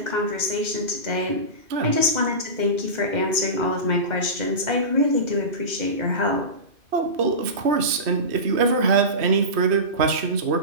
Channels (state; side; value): late; left; 2.5 ms